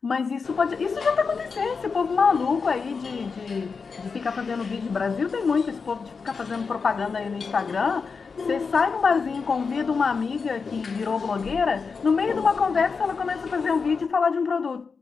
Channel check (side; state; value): right; quieter; 5.1 dB